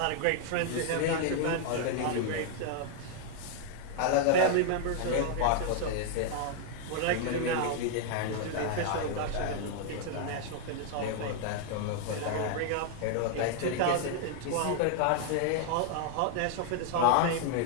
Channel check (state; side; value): different; both; correlation 0.00